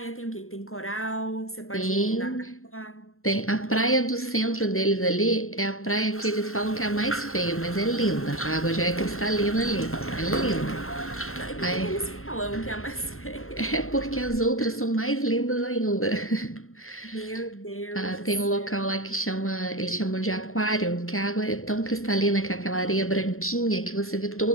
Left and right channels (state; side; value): late; right; 0.62 ms